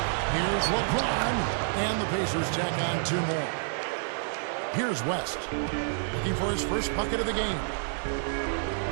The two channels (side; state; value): left; silent; 59 dB below the other